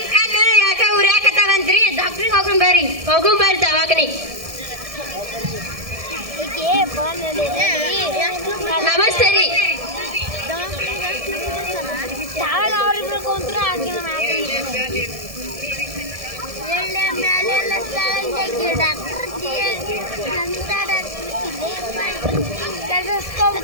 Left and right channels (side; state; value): left; late; 1.7 ms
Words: ಕಣ್ಣು ಯಾಕ ಉರಿಯಾಕತ್ತಾವಂತ್ರಿ? ಡಾಕ್ಟ್ರಿಗೆ ಹೋಗೋಣ ಬರ್ರಿ ದವಾಖಾನೆ. ನಮಸ್ತೆ ರೀ.